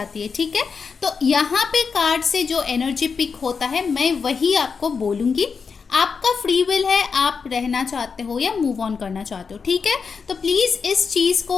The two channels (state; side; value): quieter; right; 5.5 dB